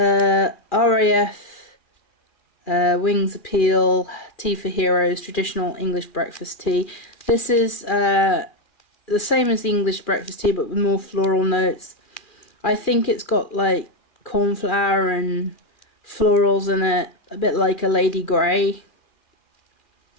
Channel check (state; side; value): late; right; 2.4 ms